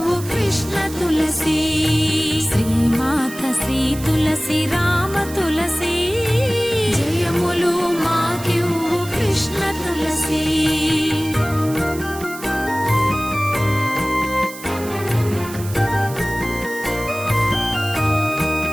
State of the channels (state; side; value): noise; right; hiss, 14 dB below the sound